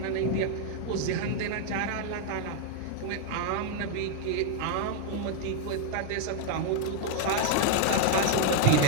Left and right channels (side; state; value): both; different; correlation 0.00